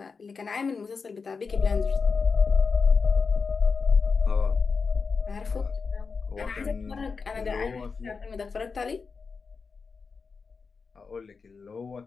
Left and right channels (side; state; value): right; quieter; 5.0 dB